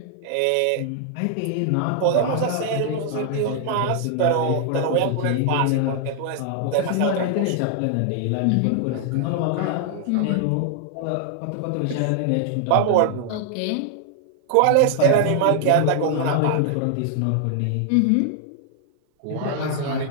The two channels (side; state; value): both; different; correlation 0.00